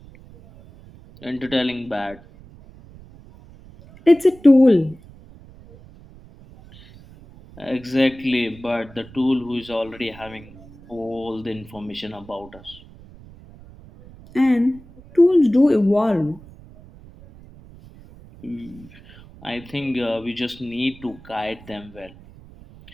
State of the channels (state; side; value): noise; right; rumble, 21 dB below the sound